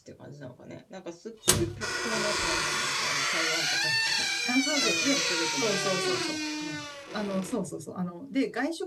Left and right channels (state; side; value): identical; both; correlation 1.00